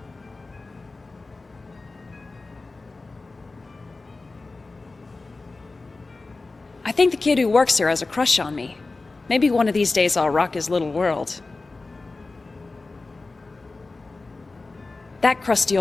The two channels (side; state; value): right; quieter; 3.5 dB